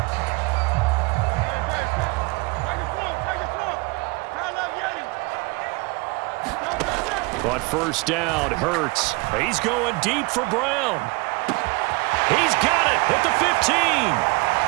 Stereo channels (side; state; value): left; quieter; 27.0 dB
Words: But first down, Hurts. He's going deep for Brown. He's got it at the 15.